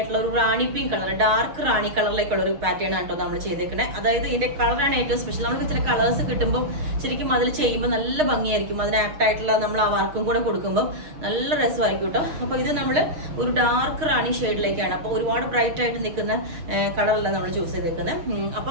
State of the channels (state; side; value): late; left; 6.4 ms